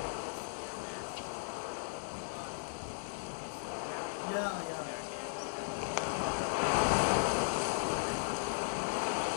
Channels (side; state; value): right; silent; digital silence